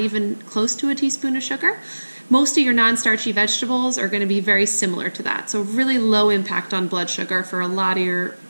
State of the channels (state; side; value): inverted; both; correlation -1.00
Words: close to a teaspoon of sugar, most of your non-starchy vegetables are going to be very similar to that. So really low impact on blood sugar for a lot of